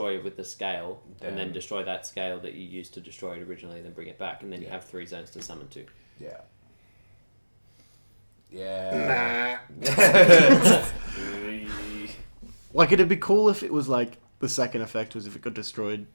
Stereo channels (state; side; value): inverted; both; correlation -1.00